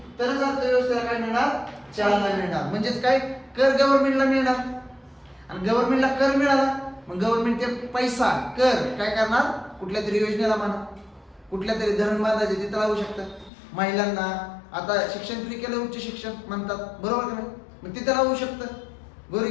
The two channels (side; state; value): right; drops out; at 13.5 s